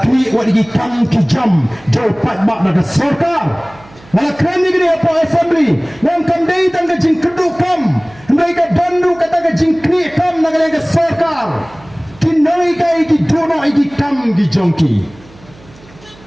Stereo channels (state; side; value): noise; right; hum, 24 dB below the sound